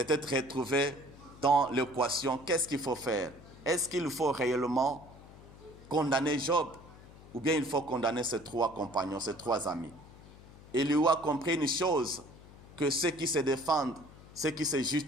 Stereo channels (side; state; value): left; noise; hum, 20 dB below the sound